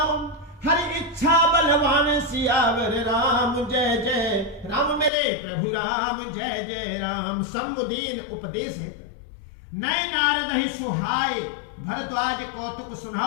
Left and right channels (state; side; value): drops out; right; at 5.1 s